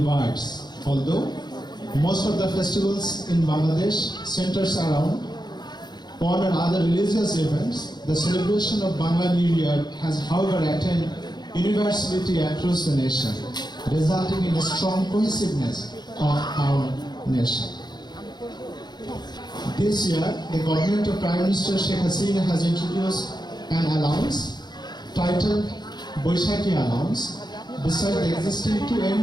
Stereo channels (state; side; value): late; right; 0.21 ms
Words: Although most of the festivals in Bangladesh centers around one or other religious events, the celebration of Bangla New Year has however attained universality across the nation, resulting in a strong cohesiveness of our nation. This year, the government of Prime Minister Sheikh Hasina has introduced an allowance titled Boishaki Allowance, beside the existing two